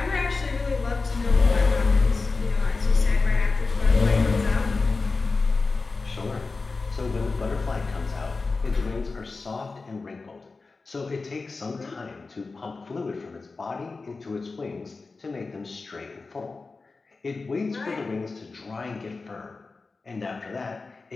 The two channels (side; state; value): right; quieter; 4.0 dB